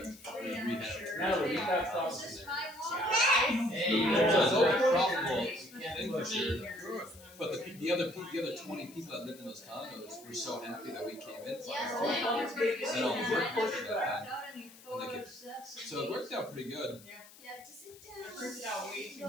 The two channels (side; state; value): left; noise; hiss, 21 dB below the sound